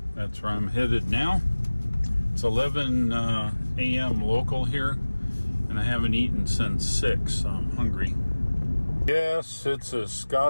that's where I'm headed now. It's 11 a.m. local here, and I haven't eaten since 6, so I'm hungry. Yes, it's a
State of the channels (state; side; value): inverted; both; correlation -1.00